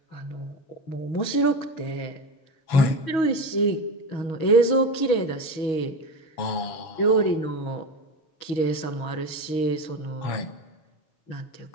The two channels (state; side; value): late; right; 6.2 ms